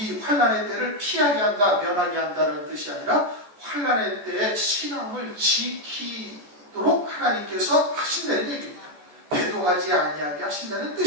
환난의 때를 피하게 한다, 면하게 한다는 뜻이 아니라 환난의 때에 신앙을 지키도록 하나님께서 하신다는 얘기입니다. 배도하지 아니하게 하신다는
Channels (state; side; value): late; left; 14 ms